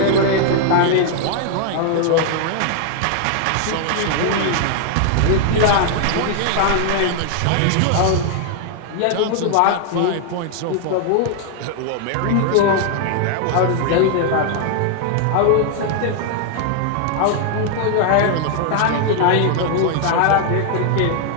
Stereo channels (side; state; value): both; different; correlation 0.00